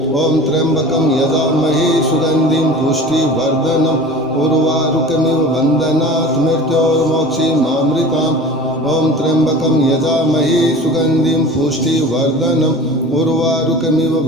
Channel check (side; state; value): both; normal; correlation 0.39